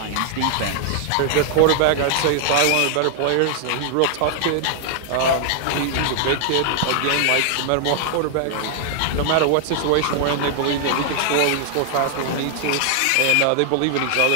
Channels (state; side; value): different; both; correlation 0.00